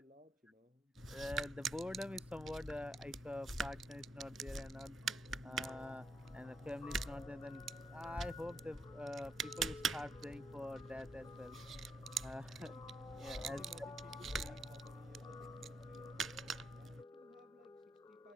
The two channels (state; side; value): normal; both; correlation 0.80